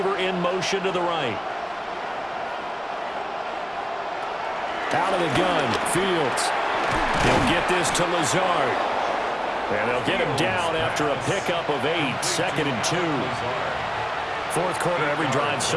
in motion to the right. Out of the gun, Fields. He'll get this to Lazard. And they'll get him down after a pickup of 8, 2nd and 2. Fourth quarter, every drive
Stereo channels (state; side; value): identical; both; correlation 1.00